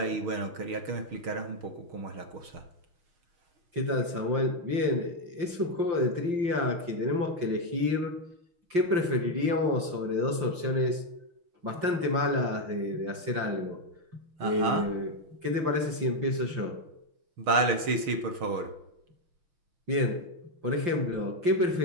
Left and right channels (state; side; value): late; left; 5.8 ms